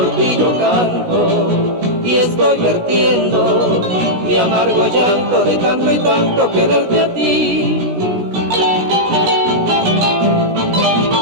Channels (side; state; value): left; late; 17 ms